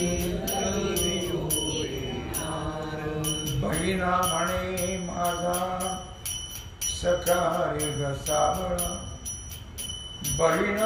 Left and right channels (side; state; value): both; identical; correlation 1.00